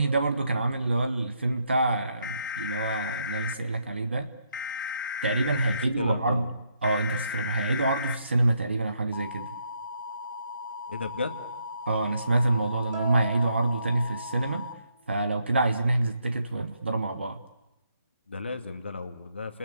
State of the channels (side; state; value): both; inverted; correlation -0.75